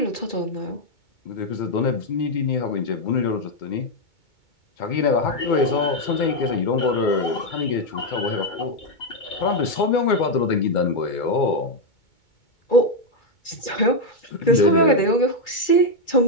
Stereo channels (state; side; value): late; right; 2.2 ms